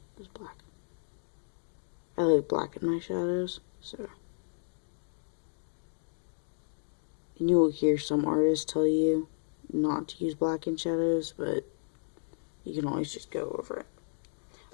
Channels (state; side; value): silent; right; digital silence